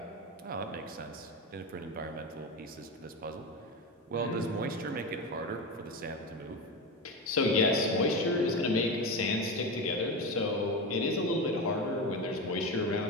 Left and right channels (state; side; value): normal; both; correlation 0.20